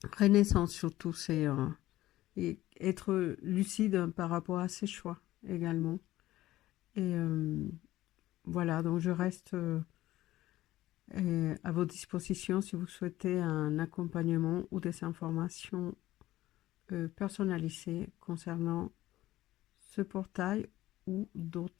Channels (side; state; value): right; quieter; 15.6 dB